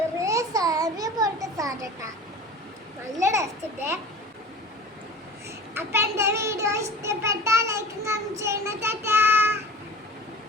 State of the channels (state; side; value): normal; both; correlation 0.39